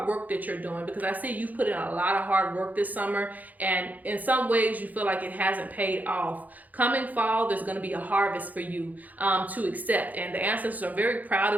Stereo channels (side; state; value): left; late; 0.080 ms